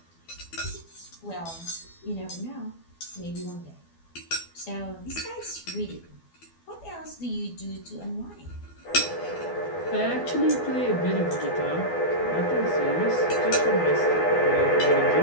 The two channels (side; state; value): right; late; 12 ms